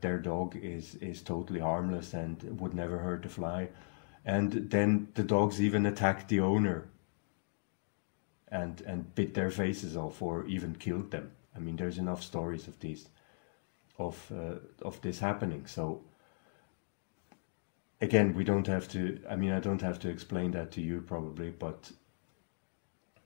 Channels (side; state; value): right; silent; digital silence